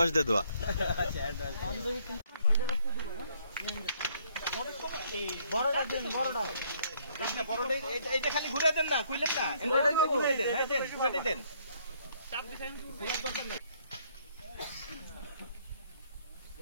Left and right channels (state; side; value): inverted; both; correlation -0.66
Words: দিয়ে দেওয়া বড়টা দেন, বড়টা এইটা খালি ঘুরে দেন না, খুললেন না, ঘুরে দেন। হ্যাঁ দেন, ঘুরে দেন, চাপ দিছেন খোলার দরকার নেই।